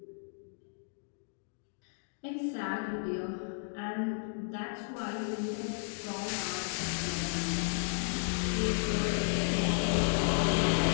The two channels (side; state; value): right; silent; digital silence